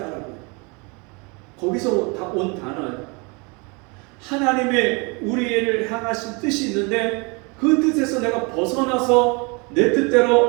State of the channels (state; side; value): quieter; left; 30.2 dB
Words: 해요. 거기서 온 단어예요. 하나님의 우리를 향하신 뜻이 있는데 그 뜻에서 내가 벗어나서 내